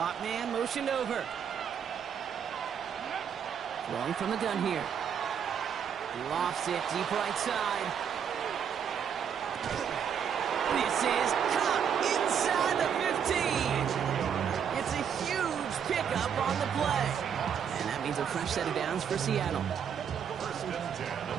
man motioned over. Throwing from the gun here. Lofts it deep right side. This is caught inside the 15. It's a huge pickup on the play. And that means a fresh set of downs for Seattle. First and 10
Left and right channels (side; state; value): left; quieter; 7.9 dB